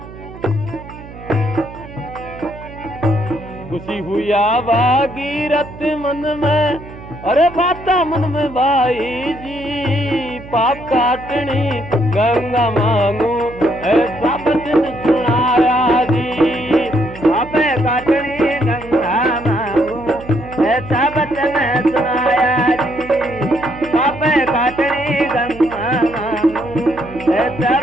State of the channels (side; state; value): right; noise; hum, 16 dB below the sound